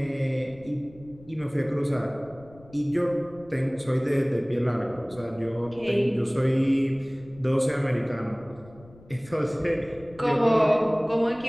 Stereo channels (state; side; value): noise; left; rumble, 22 dB below the sound